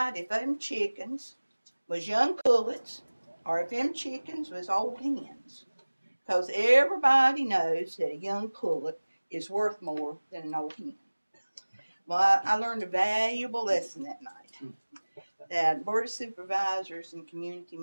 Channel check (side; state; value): both; inverted; correlation -1.00